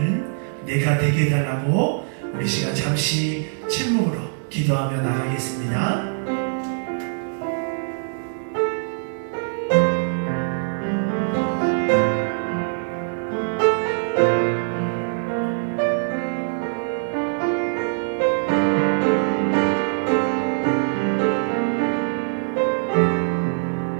내가 되게 해달라고 우리 시간 잠시 침묵으로 기도하며 나가겠습니다.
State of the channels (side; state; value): left; silent; digital silence